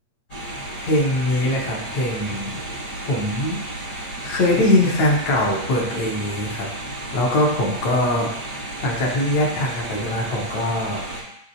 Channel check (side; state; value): right; late; 8.5 ms